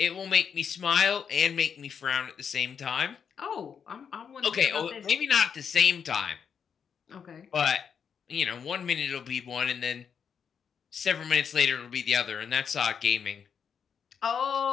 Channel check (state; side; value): quieter; right; 7.1 dB